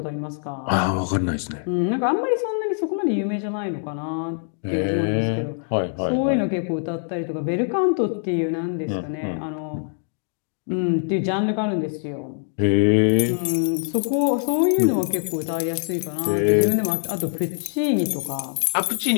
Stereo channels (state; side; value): silent; right; digital silence